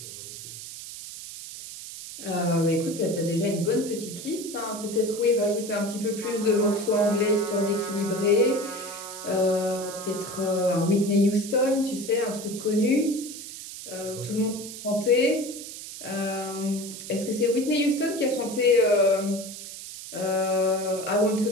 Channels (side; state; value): right; noise; hiss, 11 dB below the sound